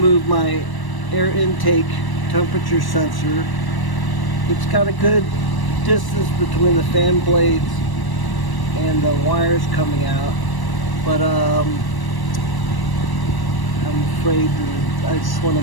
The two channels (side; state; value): right; late; 1.1 ms